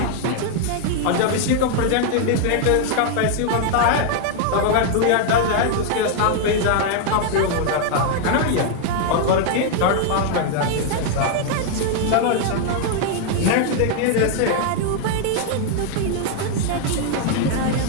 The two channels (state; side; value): different; both; correlation 0.00